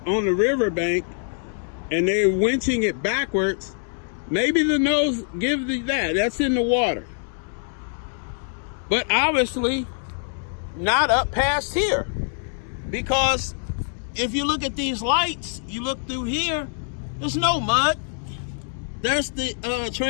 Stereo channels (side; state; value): right; silent; 62 dB below the other